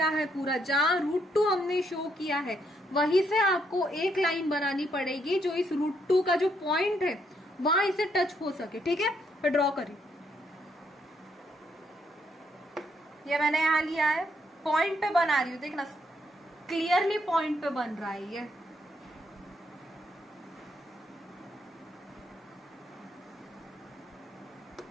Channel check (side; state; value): both; normal; correlation 0.74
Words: है पूरा, जहां √2 हमने शो किया है, वहीं से आपको एक लाइन बनानी पड़ेगी जो इस √2 का जो पॉइंट है वहां इसे टच हो सके, ठीक है। फिर ड्रॉ करिए। ये मैंने यहाँ लिया है, पॉइंट पे बना रही हूँ, देखना क्लियरली पॉइंट पे बन रहा है